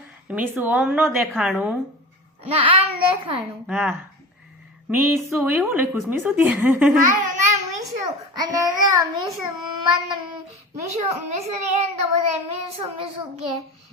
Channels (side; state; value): both; normal; correlation 0.32